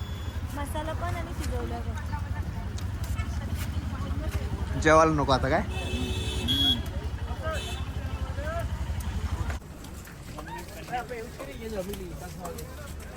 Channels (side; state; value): both; identical; correlation 1.00